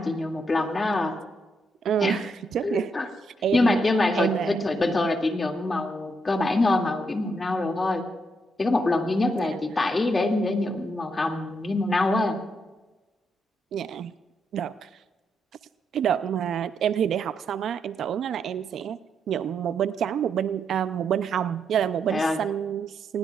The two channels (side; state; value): both; normal; correlation 0.79